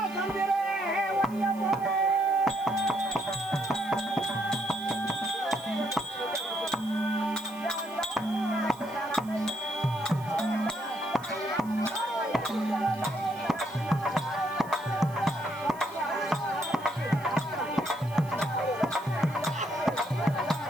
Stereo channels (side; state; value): right; noise; hiss, 22 dB below the sound